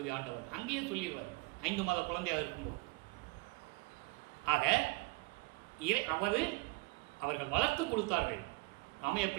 ஆண்டவர். அங்கேயே சொல்லிடுவார் 5 மாத குழந்தையாக இருக்கும்போது. ஆக அவர்கள் வளர்த்து கொடுத்தார்கள். ராமையா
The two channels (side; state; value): left; quieter; 26.0 dB